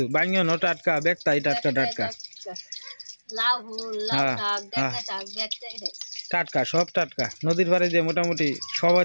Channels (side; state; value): both; inverted; correlation -1.00